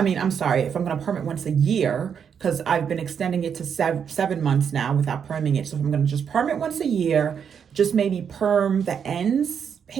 I'm going to perm it once a year, because I've been extending it to 7 months now without perming it. So if I'm going to just perm it once a year, just maybe perm the ends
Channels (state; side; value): quieter; left; 7.4 dB